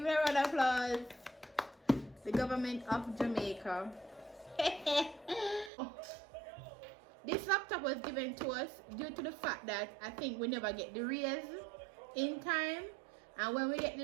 it a round of applause, the government of Jamaica. This laptop was given to us due to the fact that I think we never get the raise in time. And when we get the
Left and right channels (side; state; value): left; drops out; at 5.7 s